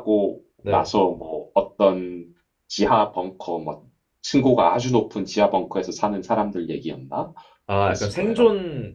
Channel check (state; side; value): identical; both; correlation 1.00